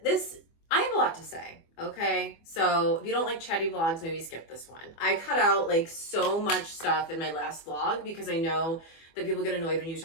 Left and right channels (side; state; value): right; late; 24 ms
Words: this. I have a lot to say, okay? So if you don't like chatty vlogs, maybe skip this one. I cut out like so much stuff in my last vlog because I know that people get annoyed when you